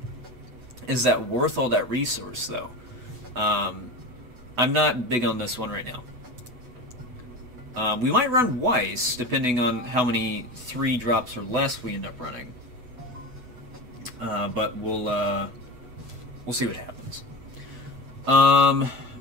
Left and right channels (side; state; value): left; late; 8.0 ms